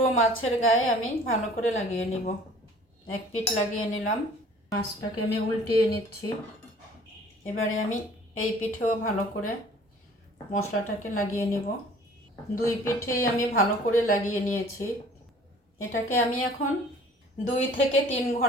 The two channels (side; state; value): both; normal; correlation 0.51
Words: মাছের গায়ে আমি ভালো করে লাগিয়ে নিব। এক পিঠ লাগিয়ে নিলাম। মাছটাকে আমি উল্টিয়ে নিচ্ছি। এবারে আমি এই পিঠেও ভালো করে মশলাটাকে লাগিয়ে নিব। 2 পিঠেই আমি ভালো করে লাগিয়ে নিয়েছি। এটাকে আমি এখন 2 থেকে 3